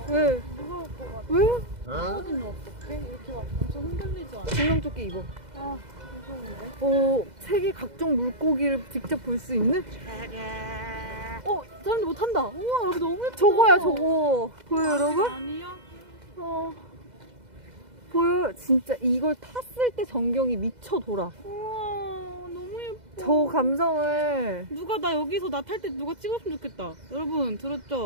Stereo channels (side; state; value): left; late; 2.0 ms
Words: 왜? 무서울 것 같아. 왜? 떨어지면 어떡해? 이렇게 막 엄청 흔들리지 않아? 증명조끼 입어. 아, 무서운데? 세계 각종 물고기를 직접 볼 수 있는? 사람들 못 탄다. 우와, 여기 너무 예뻐. 저거야, 저거. 보여요, 여러분? 아니야? 보여요? 진짜 이걸 탔을 때 전경이 미쳐 돌아. 우와, 너무 예뻐. 저 감성을. 누가 나 여기서 나 탈 때 누가 찍었으면 좋겠다. 여러분,